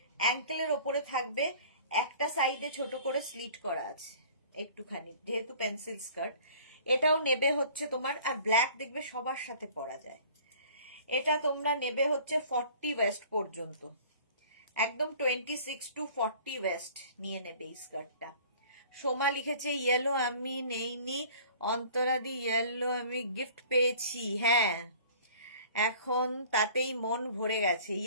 অ্যাঙ্কেলের ওপরে থাকবে, একটা সাইডে ছোট করে স্লিট করা আছে একটুখানি, যেহেতু পেন্সিল স্কার্ট। এটাও নেবে হচ্ছে তোমার, আর ব্ল্যাক দেখবে সবার সাথে পরা যায়। এটা তোমরা নেবে হচ্ছে 40 ওয়েস্ট পর্যন্ত, একদম 26 to 40 ওয়েস্ট নিয়ে নেবে এই স্কার্টটা। সোমা লিখেছে ইয়েলো আমি নেইনি, অন্তরাদি ইয়েলো আমি গিফট পেয়েছি। হ্যাঁ, এখন তাতেই মন ভরে গেছে,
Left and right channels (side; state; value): both; inverted; correlation -0.49